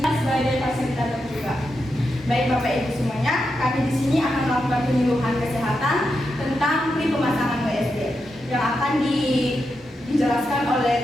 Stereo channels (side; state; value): both; normal; correlation 0.86